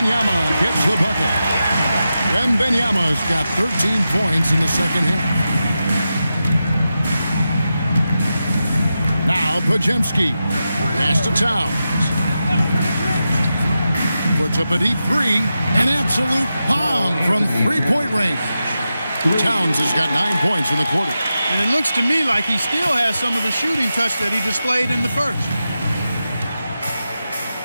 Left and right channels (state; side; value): inverted; both; correlation -0.90